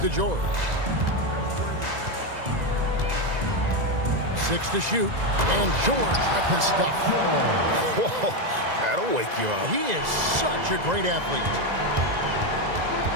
George. 6 to shoot. And George ripping stuff. Whoa, that'll wake you up. He is such a great athlete.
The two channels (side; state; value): left; late; 2.0 ms